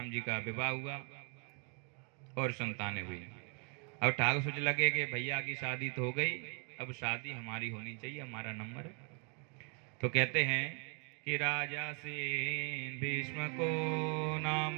जी का विवाह हुआ और संतानें हुई। अब ठाकुर सोच लगे कि भैया की शादी तो हो गई, अब शादी हमारी होनी चाहिए, हमारा नंबर है। तो कहते हैं कि राजा सेन भीष्म को नाम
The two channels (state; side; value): quieter; left; 37.8 dB